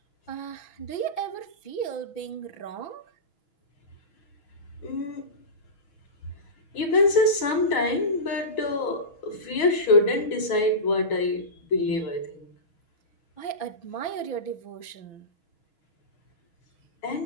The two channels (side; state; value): right; late; 6.2 ms